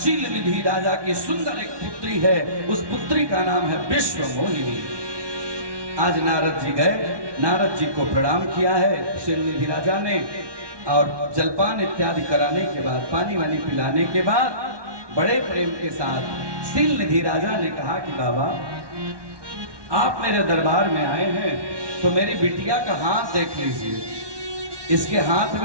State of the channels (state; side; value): late; left; 1.2 ms